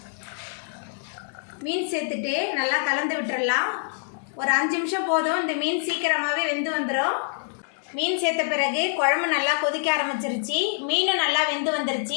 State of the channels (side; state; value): right; silent; 61 dB below the other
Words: மீன் சேர்த்துட்டு நல்லா கலந்து விட்டுடலாம். ஒரு 5 நிமிஷம் போதும். இந்த மீன் சீக்கிரமாகவே வெந்து வந்துடும். மீன் சேர்த்த பிறகு குழம்பு நல்லா கொதிக்க ஆரம்பிச்சிருச்சு. மீனும் நல்லா வெந்து